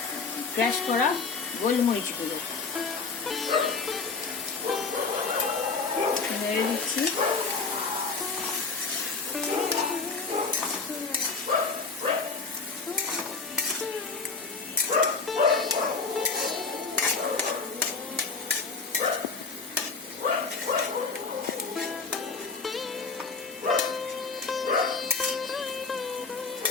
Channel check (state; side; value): quieter; right; 4.5 dB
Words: ক্র্যাশ করা গোলমরিচ গুঁড়ো নেড়ে দিচ্ছি।